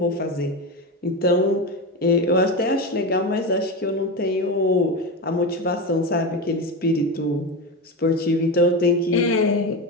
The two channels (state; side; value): normal; both; correlation 0.19